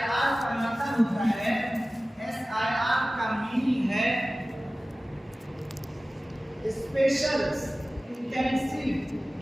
کا مطلب ہوتا ہے، SIR کا میننگ ہے اسپیشل انٹینسیو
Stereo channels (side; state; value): both; normal; correlation 0.97